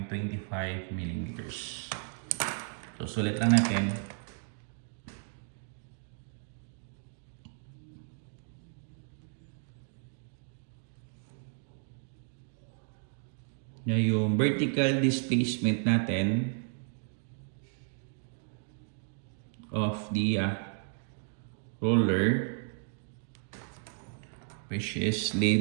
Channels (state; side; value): silent; left; 55 dB below the other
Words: millimeters. So, sulit lang natin. Na yung vertical displacement natin of the roller, which is